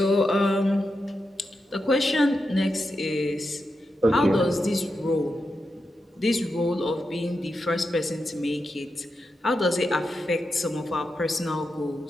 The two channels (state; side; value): normal; both; correlation 0.88